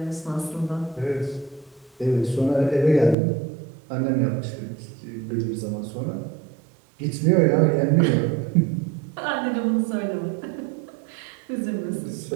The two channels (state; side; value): drops out; left; at 3.2 s